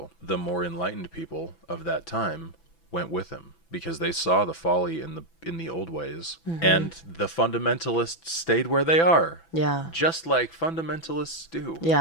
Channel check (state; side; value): late; right; 6.0 ms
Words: The more enlightened people of that time went with him because they saw the folly in the old ways, and the fundamentalists stayed where they are, Yeah. just like fundamentalists do.